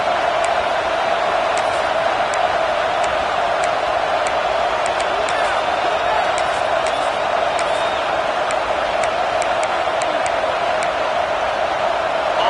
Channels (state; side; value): identical; both; correlation 1.00